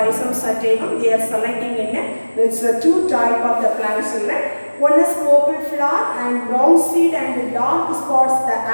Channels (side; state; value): both; inverted; correlation -1.00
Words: sativum. They are selecting in it's a two type of the plants, children. One is purple flower and brown seed and dark spots the